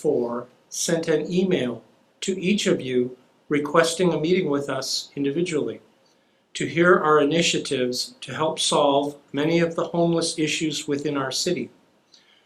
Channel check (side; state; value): both; identical; correlation 1.00